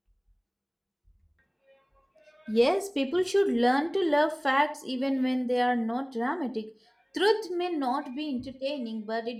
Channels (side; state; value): both; identical; correlation 1.00